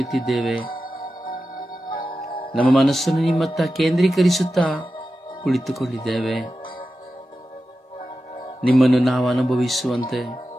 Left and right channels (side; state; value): both; normal; correlation 0.92